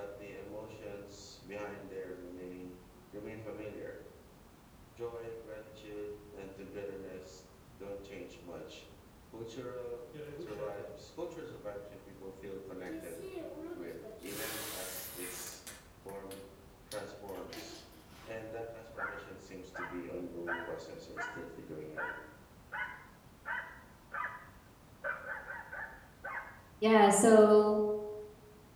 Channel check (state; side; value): identical; both; correlation 1.00